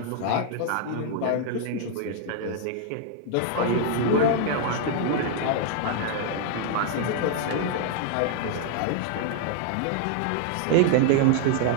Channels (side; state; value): both; different; correlation 0.00